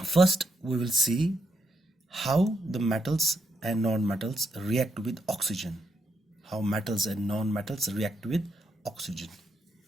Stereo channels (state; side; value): normal; both; correlation 0.79